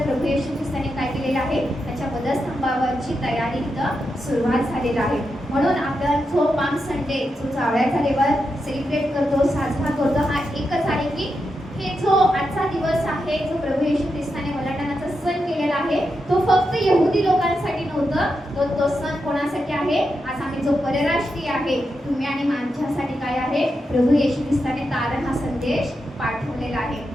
प्रभू येशू ख्रिस्ताने काय केलेलं आहे, त्याच्या वधस्तंभावरची तयारी इथं सुरुवात झालेली आहे. म्हणून आपण जो पाम संडे जो जावळ्याचा देवाला सेलिब्रेट करतो, साजरा करतो, हा एकच आहे की हे जो आजचा दिवस आहे, जो प्रभू येशू ख्रिस्ताने वलांडणाचा सण केलेला आहे, तो फक्त यहुदी लोकांसाठी नव्हतं, तो सण कोणासाठी आहे, आज आम्ही जो परराष्ट्रीय आहे, तुम्ही आणि माझ्यासाठी काय आहे, प्रभू येशू ख्रिस्ताने तारण हा संदेश पाठवलेला आहे.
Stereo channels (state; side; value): normal; both; correlation 0.86